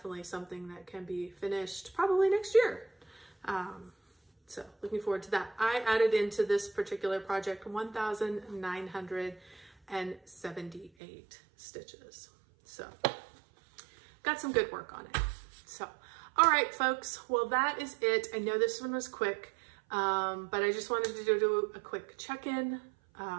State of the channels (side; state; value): left; drops out; at 10.9 s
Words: something that can be finished probably next year. So looking forward to that. I added into this particular project 1,978 stitches. So got some good work on it. So, all right, folks. Well, that is it. I know this one was quick, but I just wanted to do a quick check-in.